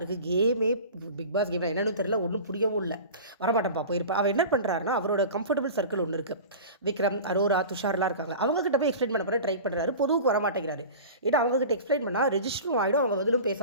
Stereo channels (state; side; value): inverted; both; correlation -0.35